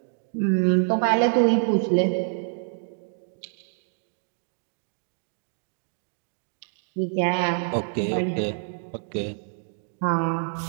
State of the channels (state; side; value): silent; left; digital silence